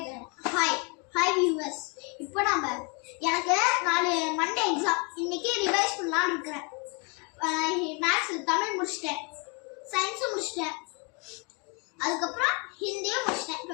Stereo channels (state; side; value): quieter; right; 33.3 dB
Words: இப்போ நம்ம எனக்கு 4 மண்டே எக்ஸாம். இன்னைக்கு ரிவைஸ் பண்ணலாம்னு இருக்கிறேன். மேத்ஸ் தமிழ் முடிச்சிட்டேன், சயின்ஸும் முடிச்சிட்டேன், அதுக்கப்புறம் ஹிந்தியும் முடிச்சிட்டேன்.